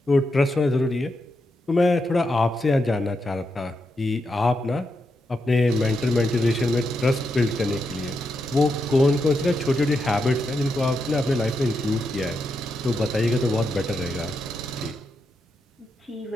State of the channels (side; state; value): both; normal; correlation 0.84